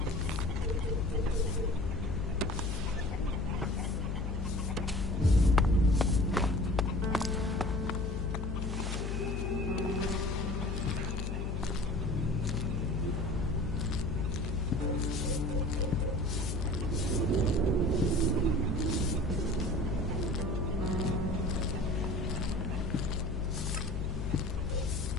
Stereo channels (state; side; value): noise; left; hum, 1 dB below the sound